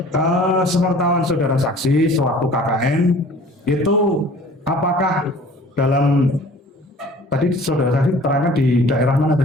sepengetahuan saudara saksi sewaktu KKN itu apakah dalam tadi saudara saksi terangkan di daerah mana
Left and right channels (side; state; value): both; normal; correlation 0.48